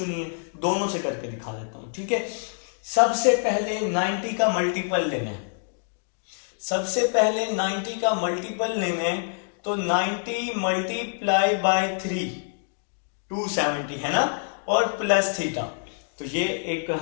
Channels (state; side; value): silent; right; digital silence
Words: नहीं है, दोनों से करके दिखा देता हूं। ठीक है, सबसे पहले 90 का मल्टीपल लेना है, सबसे पहले 90 का मल्टीपल लेना है, तो 90 मल्टीप्लाई बाय 3 270 है ना, और प्लस थीटा। तो ये एक